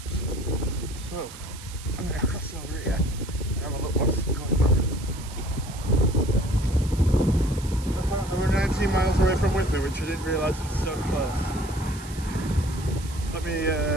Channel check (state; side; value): noise; right; hiss, 16 dB below the sound